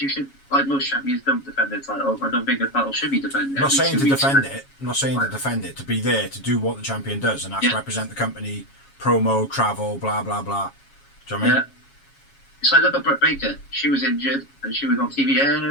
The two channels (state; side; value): late; right; 7.3 ms